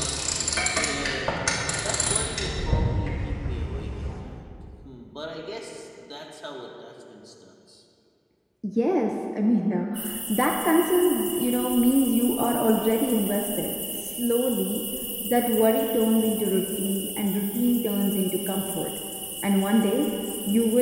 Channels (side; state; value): both; identical; correlation 1.00